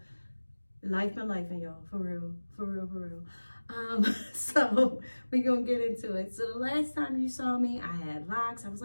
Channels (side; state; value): both; inverted; correlation -1.00